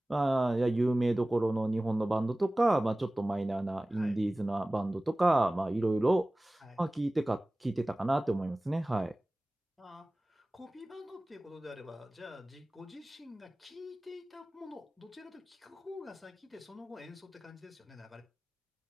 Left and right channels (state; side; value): normal; both; correlation 0.98